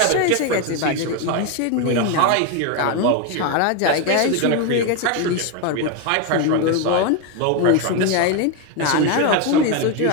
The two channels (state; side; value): different; both; correlation 0.02